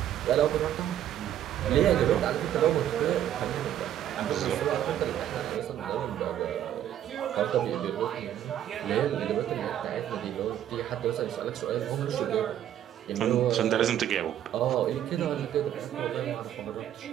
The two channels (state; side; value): quieter; left; 11.1 dB